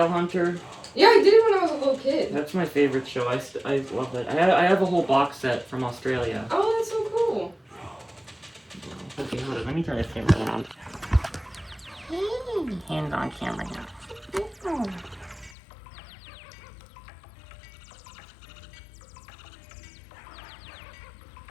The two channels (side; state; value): right; drops out; at 15.5 s